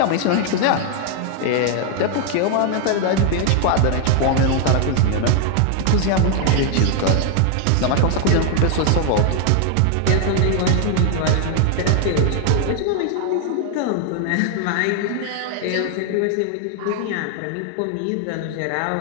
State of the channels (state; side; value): different; both; correlation 0.00